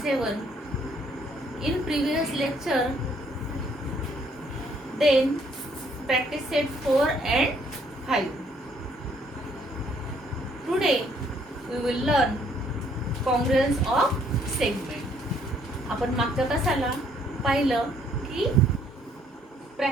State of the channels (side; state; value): both; normal; correlation 0.66